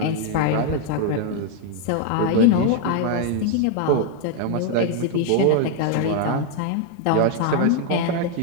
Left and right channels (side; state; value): both; different; correlation 0.01